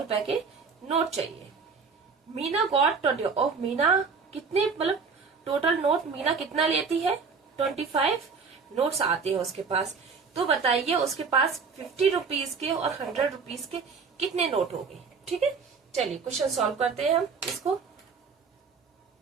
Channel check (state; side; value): quieter; left; 5.2 dB